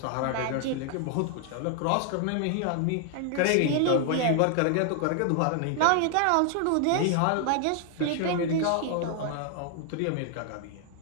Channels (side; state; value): both; different; correlation 0.00